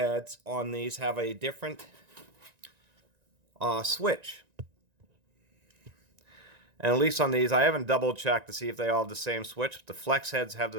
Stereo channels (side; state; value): left; late; 1.9 ms